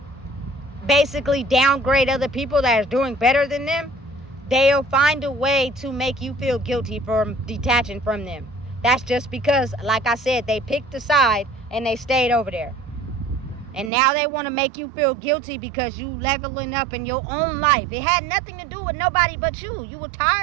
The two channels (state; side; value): drops out; left; at 13.9 s